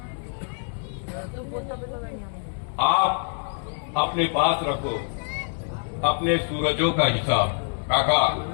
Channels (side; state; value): right; silent; 61 dB below the other